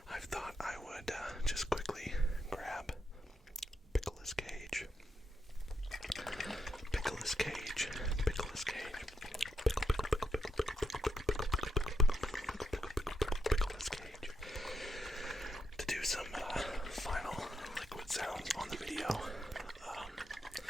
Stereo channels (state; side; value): normal; both; correlation 0.81